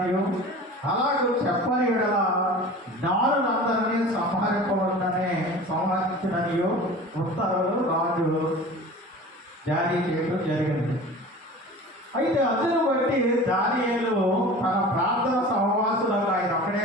అలాగే చెప్పని ఎడల జ్ఞానులందరినీ సంహరించిననియు ఉత్తర్వులు రాజు జారీ చేయడం జరిగింది. అయితే అందును బట్టి దానియేలు తన ప్రార్థన సహవాసులకు, ఆయన ఒక్కడే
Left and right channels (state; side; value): normal; both; correlation 0.38